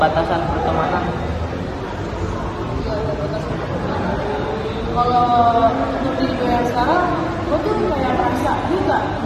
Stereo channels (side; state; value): both; identical; correlation 1.00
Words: pertemanan? Kalau untuk diri gue yang sekarang, gue tuh kayak merasa gue gak